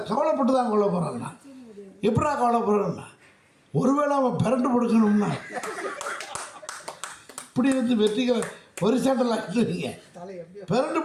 கவலைப்பட்டு தான் கவலைப்படுறேன்னா. எப்படா கவலைப்படுறேன்னா, ஒருவேளை அவன் பிறண்டு கொடுக்கணும்னா இப்படி வெற்றிக்க ஒரு சாண்டல் ஆகிடுவீங்க. பிறண்டு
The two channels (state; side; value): identical; both; correlation 1.00